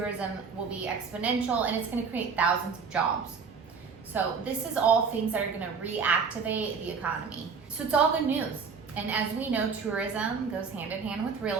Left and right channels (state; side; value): quieter; left; 5.6 dB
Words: will be exponential, and it's going to create thousands of jobs. So this is all things that are going to reactivate the economy. So it's all good news. And as we know, tourism goes hand in hand with